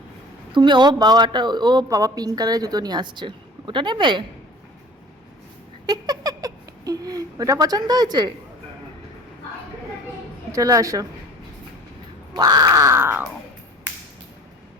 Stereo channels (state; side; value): normal; both; correlation 0.44